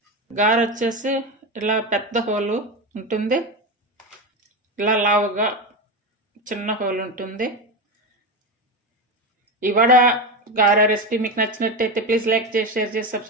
గారె వచ్చేసి ఇలా పెద్ద హోలు ఉంటుంది, ఇలా లావుగా చిన్న హోల్ ఉంటుంది. ఈ వడ గారె రెసిపీ మీకు నచ్చినట్టయితే ప్లీజ్ లైక్ చేసి, షేర్ చేసి,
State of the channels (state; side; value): normal; both; correlation 0.17